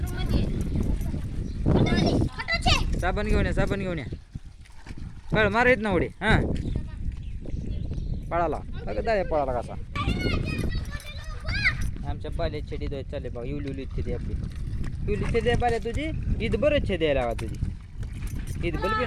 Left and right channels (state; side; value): identical; both; correlation 1.00